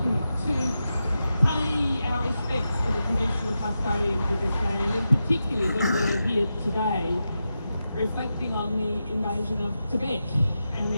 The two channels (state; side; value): inverted; both; correlation -0.89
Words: to pay our respects to the traditional custodians of this land, and particularly when we're here today reflecting on the invasion of Tibet and